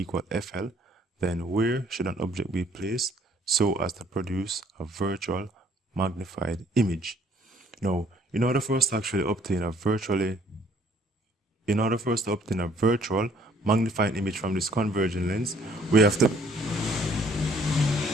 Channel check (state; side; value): normal; both; correlation 0.62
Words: FL, then where should an object be placed so as to produce a virtual magnified image? Now, in order for us to actually obtain a virtual magnifying image from this convergent lens, we have to